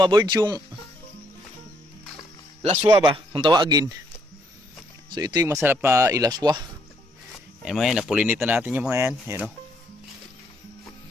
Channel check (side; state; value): both; normal; correlation 0.71